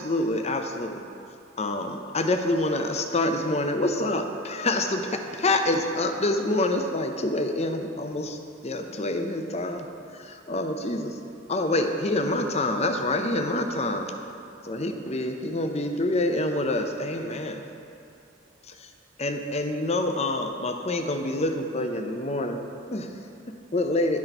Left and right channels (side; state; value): both; normal; correlation 0.29